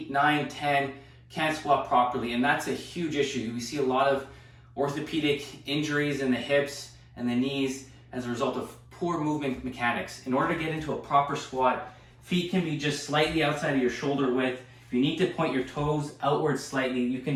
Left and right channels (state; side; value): identical; both; correlation 1.00